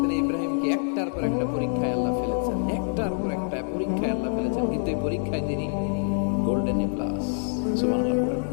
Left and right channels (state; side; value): silent; right; digital silence